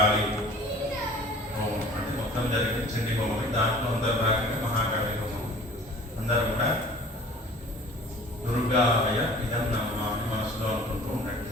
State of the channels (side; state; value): both; normal; correlation 0.47